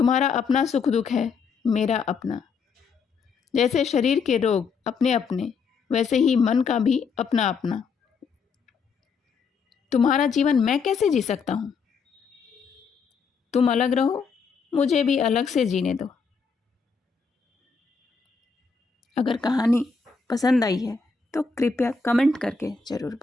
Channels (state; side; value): quieter; right; 5.4 dB